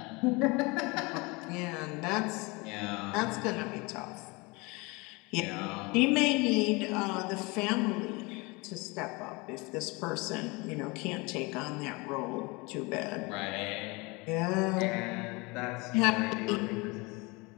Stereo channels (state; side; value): quieter; right; 26.1 dB